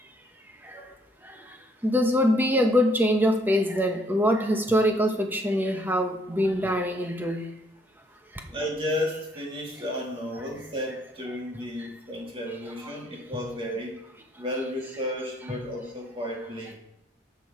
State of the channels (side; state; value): both; normal; correlation 0.67